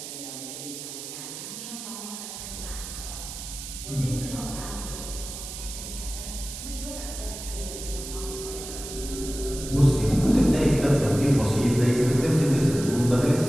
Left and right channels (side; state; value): right; noise; hiss, 9 dB below the sound